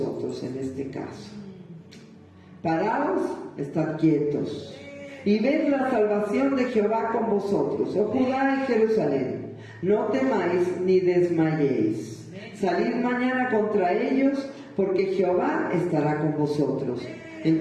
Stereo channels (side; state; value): both; identical; correlation 1.00